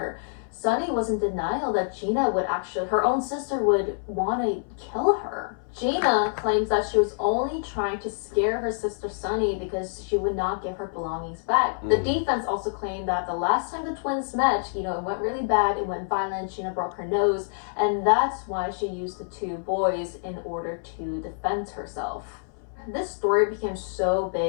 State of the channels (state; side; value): silent; right; 61 dB below the other